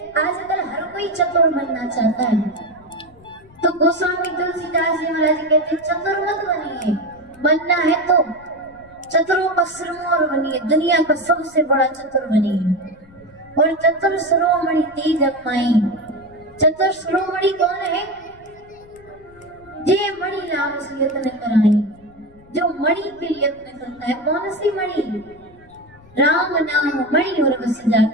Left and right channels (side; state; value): left; noise; rumble, 25 dB below the sound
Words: आजकल हर कोई चतुर बनना चाहता है, तो गोस्वामी तुलसीदास जी महाराज कहते चतुर मत बनिए, बनना है तो चतुरों का सिरमौर बनिए, दुनिया का सबसे बड़ा चतुर बनिए। और चतुर शिरोमणि तेरी जगमाई। चतुर शिरोमणि कौन है? जे मणि नाम से यत्न कराई, जो मणि के लिए यत्न करता है। कौन सी मणि? राम नाम मणि और बस